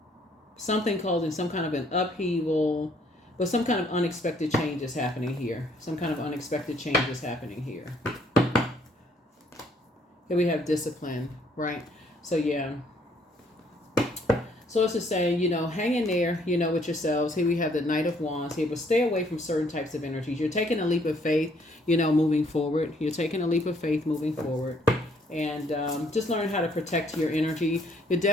something causing some kind of an upheaval, but some kind of unexpected change is happening here. Some kind of unexpected change is happening here. Here we have discipline, right? So yeah. So it's just saying, hang in there, with yourselves. Here we have the Knight of Wands here, but stay away from certain types of energies. You're taking a leap of faith, moving forward. You're taking a leap of faith moving forward. And just learn how to protect your energy. You're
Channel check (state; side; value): normal; both; correlation 0.65